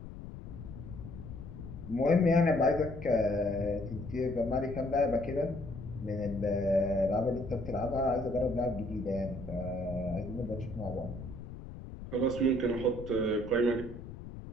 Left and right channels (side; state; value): left; noise; rumble, 12 dB below the sound